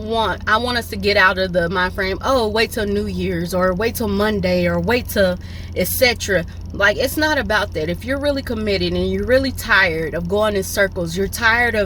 us to get out of the mind frame, oh, wait till New Year's, or wait till Monday, or wait till etc. Like, it's not about that. If you're really committed and you're really tired of going in circles, you're tired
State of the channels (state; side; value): identical; both; correlation 1.00